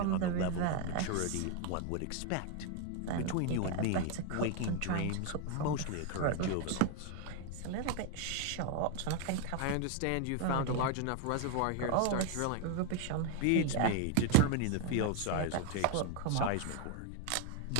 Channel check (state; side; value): different; both; correlation 0.01